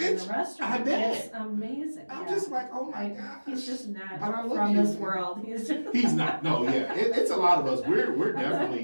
the restaurant. I bet. It's amazing. I'm just like, oh my gosh. He's just not from this world. He's not. No, yeah, it's a lot of us. We're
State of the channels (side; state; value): both; inverted; correlation -1.00